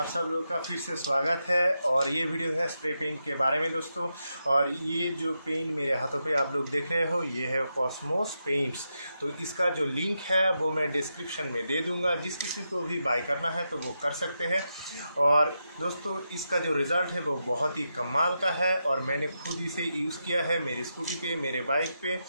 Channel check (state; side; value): inverted; both; correlation -0.86